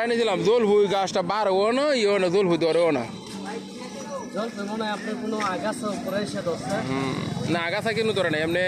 নিয়েছিলাম, জলপুরি গাছটা বাড়বো না, ইও না, জলপুরি ধরেও না। না আগাছা কিন্তু ধরে না, এমনি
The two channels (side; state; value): both; identical; correlation 1.00